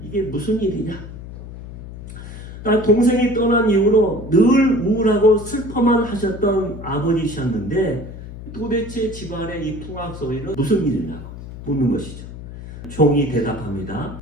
이게 무슨 일이냐? 동생이 떠난 이후로 늘 우울하고 슬퍼만 하셨던 아버지셨는데 도대체 집안의 이 풍악 소리는 무슨 일이냐고 묻는 것이죠. 종이 대답합니다.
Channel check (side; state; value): left; noise; hum, 12 dB below the sound